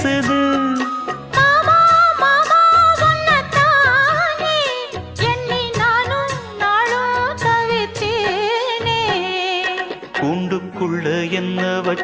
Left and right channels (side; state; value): both; identical; correlation 1.00